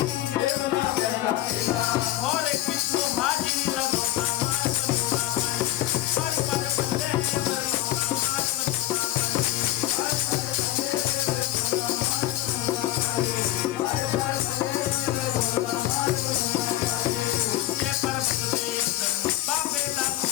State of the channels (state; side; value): quieter; right; 14.7 dB